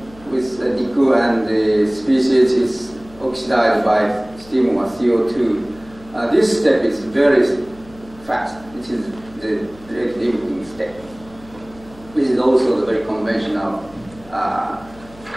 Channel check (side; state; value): left; noise; hum, 22 dB below the sound